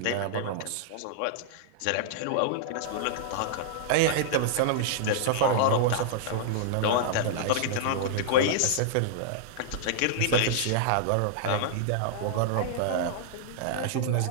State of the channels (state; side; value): different; both; correlation -0.01